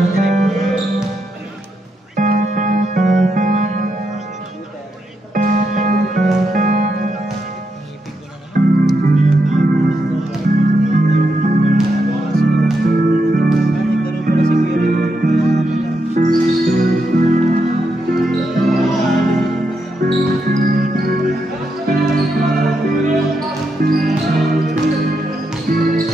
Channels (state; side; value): normal; both; correlation 0.82